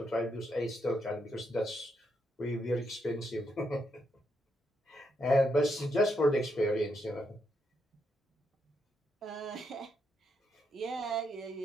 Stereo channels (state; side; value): normal; both; correlation 0.79